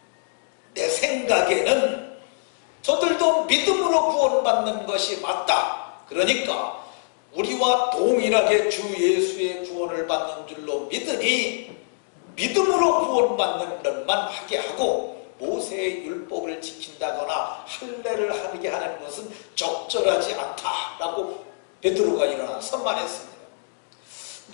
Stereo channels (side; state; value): right; silent; digital silence